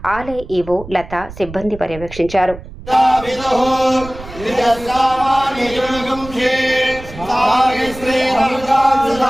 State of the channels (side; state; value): right; noise; rumble, 15 dB below the sound